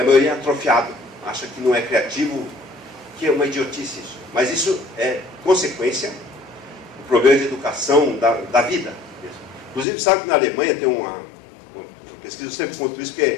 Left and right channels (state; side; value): drops out; right; at 9.9 s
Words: maioria é atrofiado, acha que não é criativo, que é uma idiotice isso. Mas isso é consequência do problema de educação da vida. Inclusive, sabe que na Alemanha tem uma pesquisa, eu sempre conto isso,